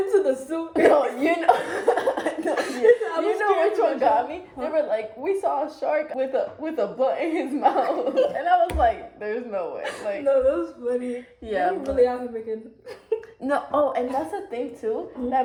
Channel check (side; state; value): both; identical; correlation 1.00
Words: the zoo. No, you know, no, I you was know which scared one got me? They were like, we saw a shark with a blunt in his mouth, and I was like, there's no way. Like, No, that was funny. yeah, They're really out here making. no. Oh, and that's the thing too